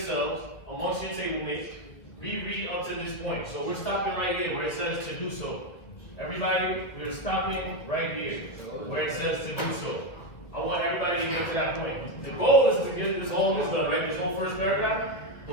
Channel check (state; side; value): late; right; 2.0 ms